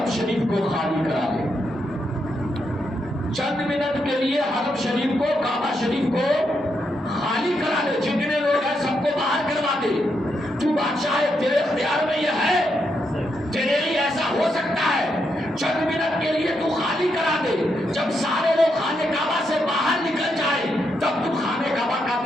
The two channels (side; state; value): both; normal; correlation 0.81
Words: شریف کو خالی کرا دے، چند منٹ کے لیے حرم شریف کو، کعبہ شریف کو خالی کرا دے، جتنے لوگ ہیں سب کو باہر کروا دے۔ تو بادشاہ ہے، تیرے اختیار میں یہ ہے، تیرے لیے ایسا ہو سکتا ہے، چند منٹ کے لیے تو خالی کرا دے، جب سارے لوگ خانے کعبہ سے باہر نکل جائے تب تو خانے کعبہ کا